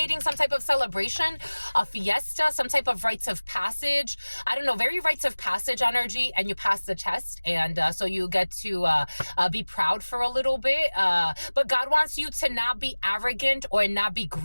some type of celebration, a fiesta, some type of rites of passage. I don't know, very rites of passage energy, and you pass the test, and so you get to be proud for a little bit. But God wants you to not be arrogant or not be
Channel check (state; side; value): inverted; both; correlation -1.00